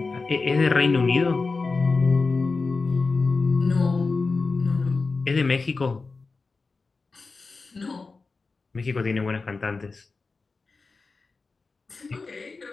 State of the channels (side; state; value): right; quieter; 4.0 dB